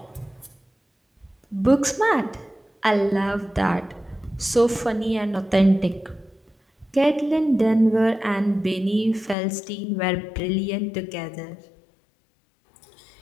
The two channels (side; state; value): right; drops out; at 9.3 s